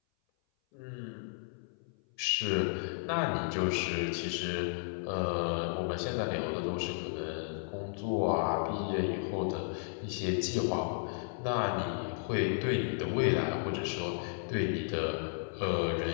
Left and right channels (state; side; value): silent; right; 55 dB below the other